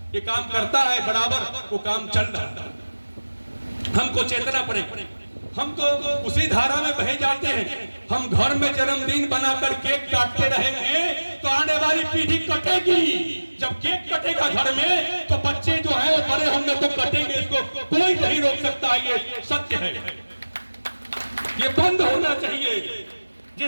ये काम करता है बराबर, वो काम चल रहा है। हमको चेतना पड़े, हम तो उसी धारा में बहे जाते हैं। हम घर में जन्मदिन बनाकर केक काटते रहेंगे तो आने वाली पीढ़ी कटेगी। जब केक कटेगा घर में तो बच्चे जो है वो बड़े होंगे तो कटेंगे, इसको कोई नहीं रोक सकता, ये सत्य है, ये बंद होना चाहिए।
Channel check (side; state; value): both; inverted; correlation -1.00